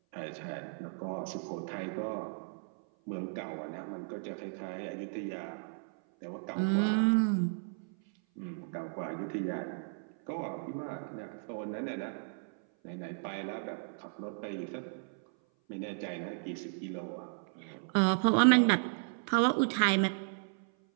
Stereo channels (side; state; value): left; silent; 55 dB below the other